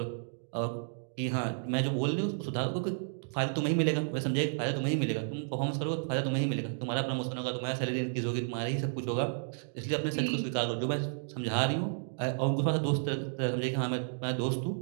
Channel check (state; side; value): silent; left; digital silence